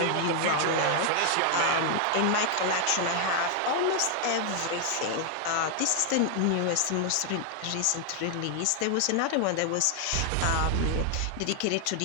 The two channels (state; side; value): different; both; correlation 0.00